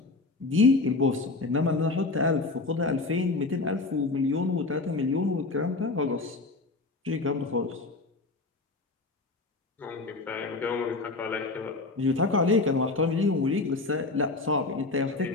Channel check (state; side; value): quieter; right; 3.5 dB